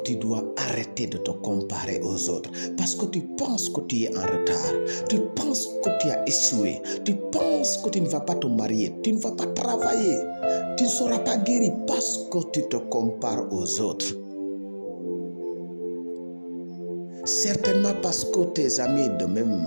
tu dois arrêter de te comparer aux autres. Parce que tu penses que tu es en retard. Tu penses que tu as échoué. Tu penses que tu ne vas pas te marier. Tu ne vas pas travailler. Tu ne seras pas guéri parce que tu te compares aux autres. Certainement parce que tes amis de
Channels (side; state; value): both; inverted; correlation -1.00